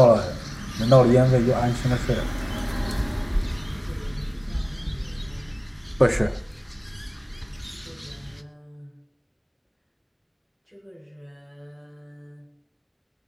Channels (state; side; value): identical; both; correlation 1.00